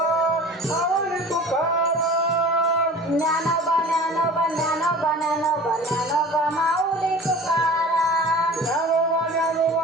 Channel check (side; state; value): both; normal; correlation 0.40